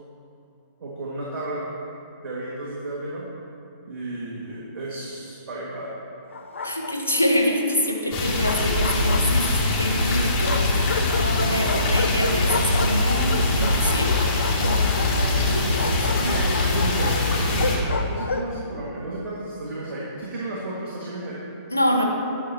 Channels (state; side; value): inverted; both; correlation -0.58